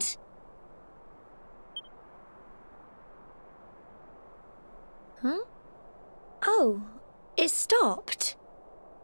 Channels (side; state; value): both; inverted; correlation -1.00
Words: Huh? Oh, it stopped.